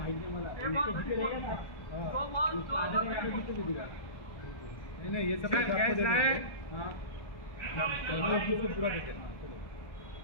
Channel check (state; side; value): late; right; 1.4 ms